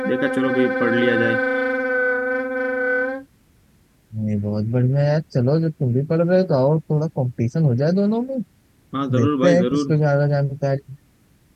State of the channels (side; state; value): both; identical; correlation 1.00